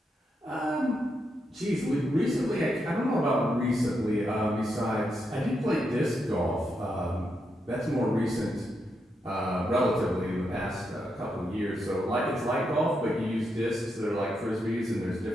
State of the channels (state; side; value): normal; both; correlation 0.83